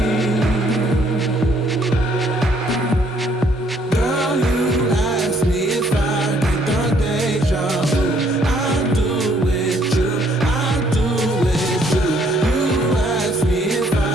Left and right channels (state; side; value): normal; both; correlation 0.65